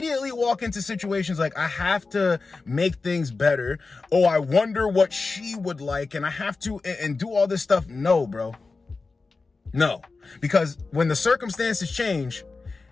walk into situations like, I have to make things better. Oh, I wonder what she would like. And I have to and do all this stuff. No, bro. No, because when the circumstances change,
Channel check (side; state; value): right; quieter; 4.0 dB